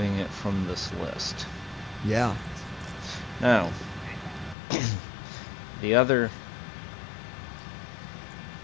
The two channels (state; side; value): drops out; right; at 4.5 s